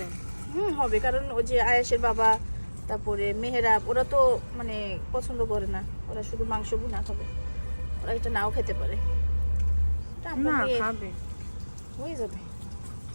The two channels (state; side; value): inverted; both; correlation -1.00